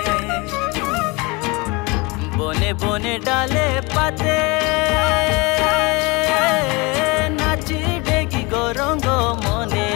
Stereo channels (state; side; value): quieter; right; 26.4 dB